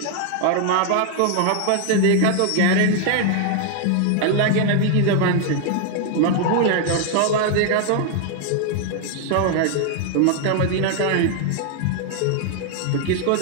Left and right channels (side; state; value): both; different; correlation 0.00